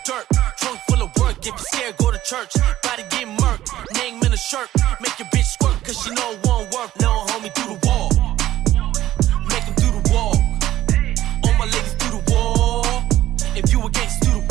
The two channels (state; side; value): quieter; left; 13.9 dB